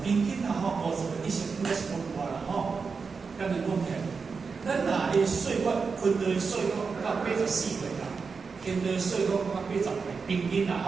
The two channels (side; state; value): left; quieter; 5.1 dB